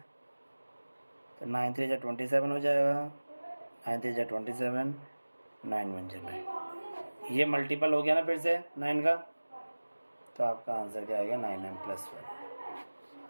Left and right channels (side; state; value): both; inverted; correlation -1.00